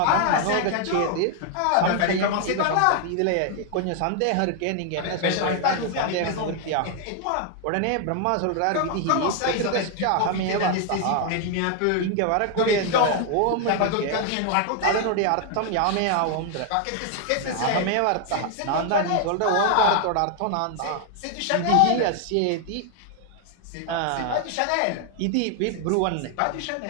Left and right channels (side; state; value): both; different; correlation 0.00